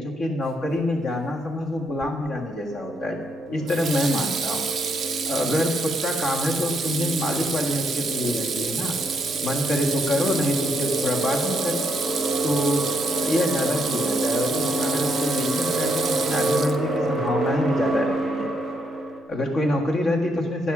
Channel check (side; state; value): both; normal; correlation 0.76